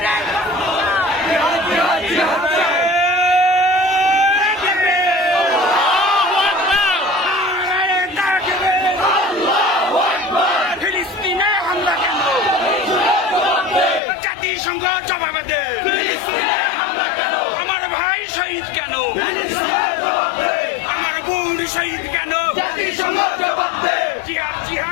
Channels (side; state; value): right; drops out; at 14.0 s